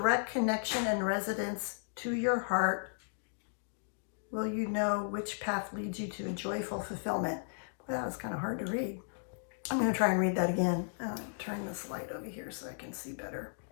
connection and resonance to your heart will you know which path leads you to a joyful fulfillment. Well, that was kind of hard to read. I'm going to try and read that again. Turn this light over here so I can see better.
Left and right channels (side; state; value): right; silent; digital silence